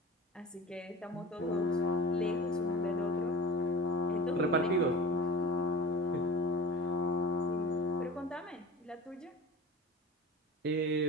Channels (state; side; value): normal; both; correlation 0.33